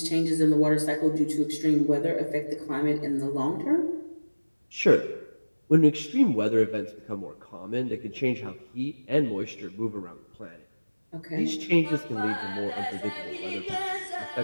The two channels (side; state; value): both; inverted; correlation -1.00